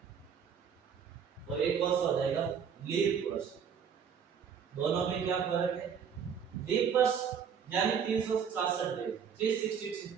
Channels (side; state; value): left; quieter; 7.3 dB